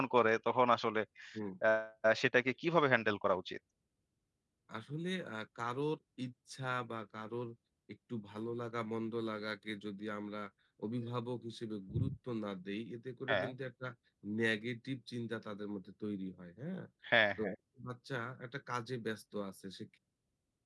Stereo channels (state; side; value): identical; both; correlation 1.00